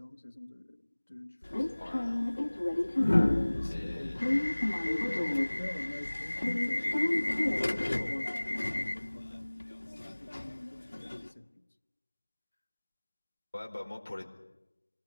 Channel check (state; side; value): inverted; both; correlation -1.00